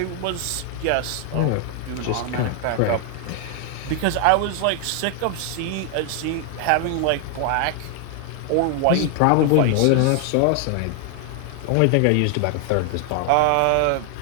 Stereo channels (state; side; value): different; both; correlation 0.00